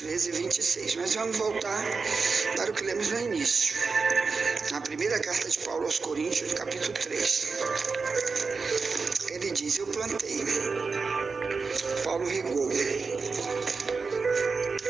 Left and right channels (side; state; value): left; quieter; 4.6 dB